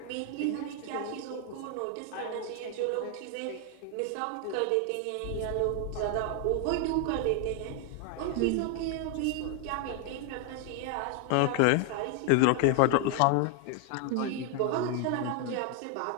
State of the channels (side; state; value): both; different; correlation 0.00